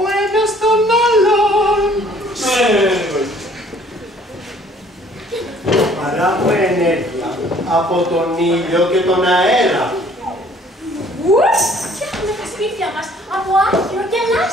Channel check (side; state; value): both; normal; correlation 0.58